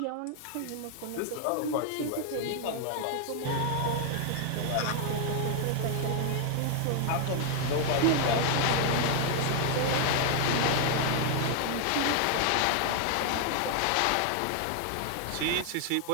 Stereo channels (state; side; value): different; both; correlation 0.00